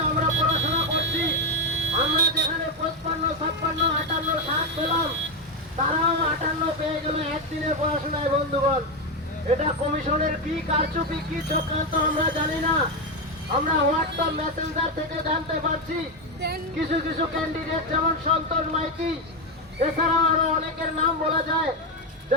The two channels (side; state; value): both; normal; correlation 0.08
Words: আমরা পড়াশোনা করছি। আমরা যেখানে 55, 56, 58, 60 পেলাম, তারাও 58 পেয়ে গেল একদিনের পড়াশোনায়। বন্ধুগণ, এটা কমিশনের কি কারচুপি, কি চক্রান্ত আমরা জানি না। আমরা হোয়াটসঅ্যাপ মেসেঞ্জার থেকে জানতে পারছি কিছু কিছু ক্যান্ডিডেট, যেমন সন্তোষ মাইতি, এছাড়াও আরো অনেকের নাম বলা যায়,